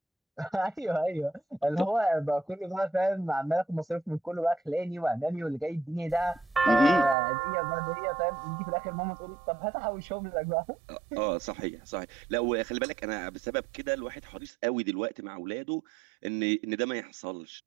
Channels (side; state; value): left; drops out; at 7.2 s